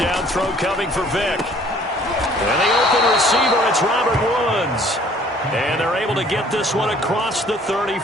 throw coming for Vick. And the open receiver, it's Robert Woods. And they're able to get this one across the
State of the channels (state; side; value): normal; both; correlation 0.56